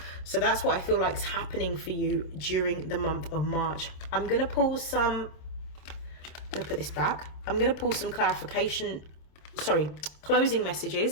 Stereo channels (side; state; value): right; late; 26 ms